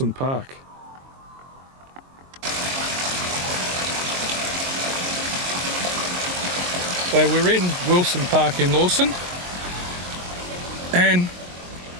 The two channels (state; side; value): late; left; 22 ms